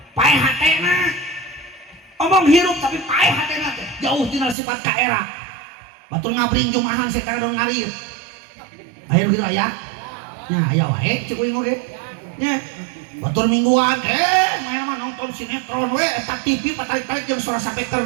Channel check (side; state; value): left; drops out; at 4.5 s